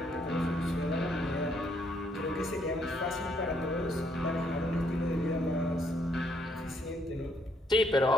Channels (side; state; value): both; normal; correlation 0.71